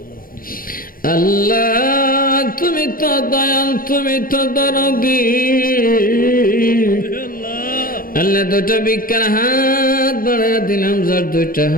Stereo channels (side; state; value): right; late; 0.41 ms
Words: আল্লাহ তুমি তো দয়াল তুমি তো দরদি আল্লাহ দুটো বিজ্ঞান হাত বাড়াইয়া দিলাম যার দুইটা